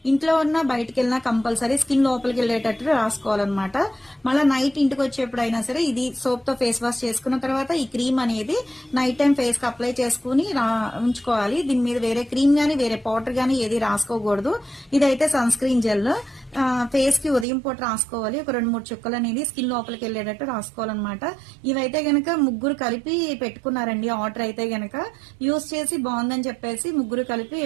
ఇంట్లో ఉన్న బయటకు వెళ్ళినా కంపల్సరీ స్కిన్ లోపలికి వెళ్ళేటట్టు రాసుకోవాలన్నమాట. మళ్ళీ నైట్ ఇంటికి వచ్చేప్పుడైనా సరే ఇది సోప్ తో ఫేస్ వాష్ చేసుకున్న తర్వాత ఈ క్రీమ్ అనేది నైట్ టైం ఫేస్ కి అప్లై చేసుకుని ఉంచుకోవాలి. దీని మీద వేరే క్రీమ్ గానీ వేరే పౌడర్ గానీ ఏది రాసుకోకూడదు. ఇదైతే సన్ స్క్రీన్ జెల్ ఫేస్ కి ఉదయం పూట రాసుకోవాలి. ఒక 2-3 చుక్కలు అనేది స్కిన్ లోపలికి వెళ్ళేటట్టు రాసుకోవాలన్నమాట. ఇవైతే గనక ముగ్గురు కలిపి పెట్టుకున్నారండి ఆర్డర్. అయితే గనక యూజ్ చేసి బాగుందని చెప్పేసి ముగ్గురు కలిపి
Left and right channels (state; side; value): drops out; left; at 17.4 s